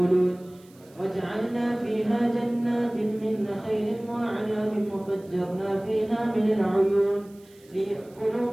وجعلنا فيها جنات من نخيل وأعناب وفجرنا فيها من العيون ليأكلوا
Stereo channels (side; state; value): right; noise; hiss, 28 dB below the sound